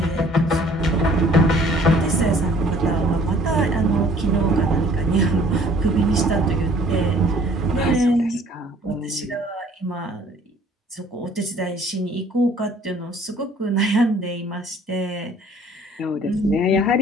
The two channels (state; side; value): normal; both; correlation 0.55